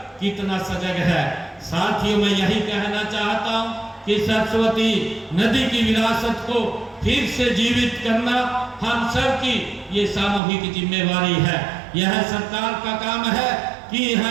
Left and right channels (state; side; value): drops out; left; at 10.4 s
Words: कितना सजग है। साथियों, मैं यही कहना चाहता हूँ कि सरस्वती नदी की विरासत को फिर से जीवित करना हम सब की ये सामूहिक जिम्मेवारी है। यह सरकार का काम है कि